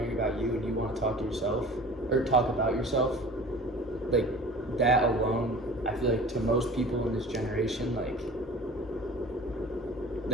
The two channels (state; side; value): normal; both; correlation 0.41